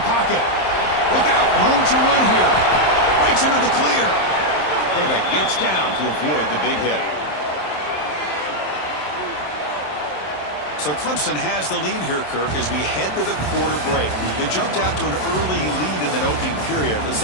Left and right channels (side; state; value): right; late; 27 ms